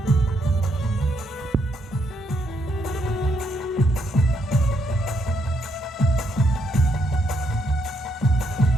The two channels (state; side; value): normal; both; correlation 0.75